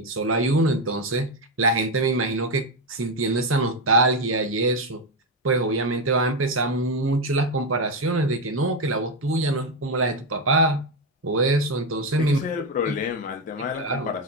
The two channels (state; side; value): normal; both; correlation 0.08